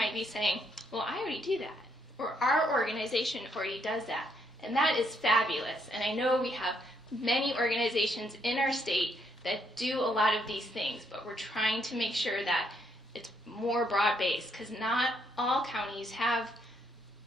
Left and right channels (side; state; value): both; normal; correlation 0.73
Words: be saying, well, I already do that, or our organization already does that. And that is fabulous. And I know we have many organizations in our state that do a lot of these things, but we're trying to make sure that it's more broad-based, because not all counties have